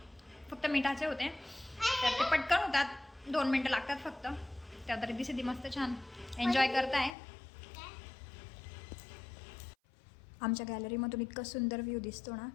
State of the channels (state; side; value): drops out; right; at 7.2 s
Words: फक्त मिठाचे होते. तर ते पटकन होतात, 2 मिनटं लागतात फक्त. त्यात रिद्धी सिद्धी मस्त छान एन्जॉय करताय. आमच्या गॅलरीमधून इतकं सुंदर व्ह्यू दिसतो ना,